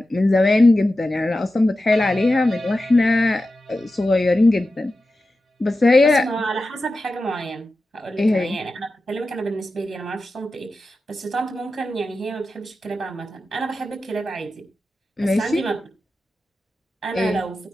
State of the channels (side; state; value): both; normal; correlation 0.92